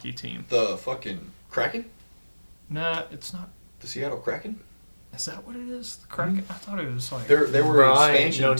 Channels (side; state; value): both; inverted; correlation -1.00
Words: team. the fucking Kraken? Nah, it's not. The Seattle Kraken? Is that what it is? The Kraken? I thought it was like. They were an I expansion know